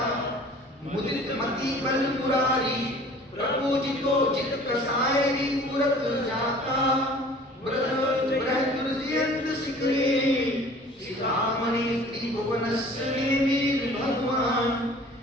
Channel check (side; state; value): both; normal; correlation 0.48